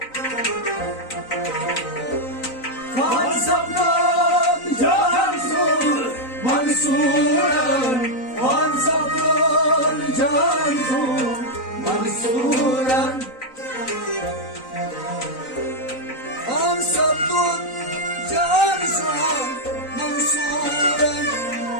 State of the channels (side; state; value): right; late; 3.9 ms